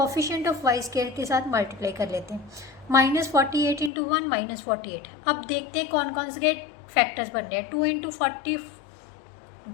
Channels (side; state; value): right; drops out; at 3.9 s